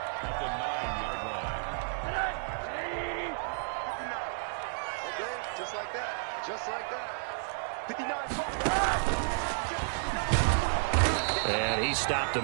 At the 9-yard line. Okay, just like that. Just like that. 59. And he stopped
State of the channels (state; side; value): silent; left; digital silence